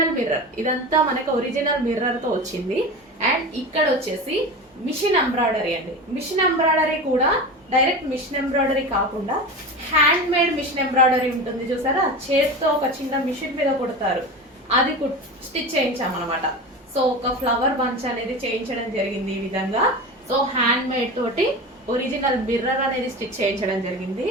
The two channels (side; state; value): both; normal; correlation 0.28